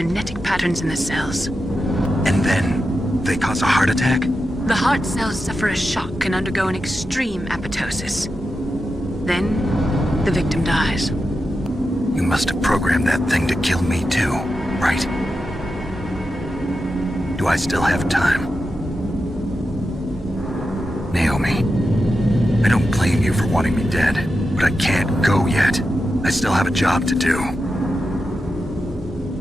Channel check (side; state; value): both; normal; correlation 0.89